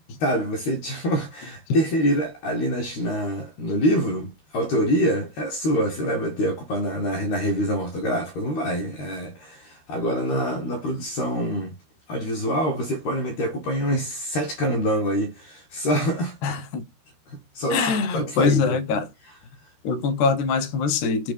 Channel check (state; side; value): late; right; 13 ms